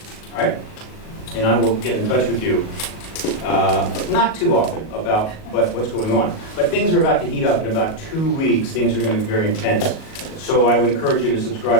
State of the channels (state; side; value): late; right; 38 ms